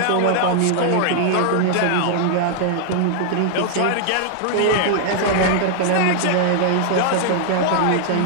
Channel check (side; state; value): both; different; correlation 0.00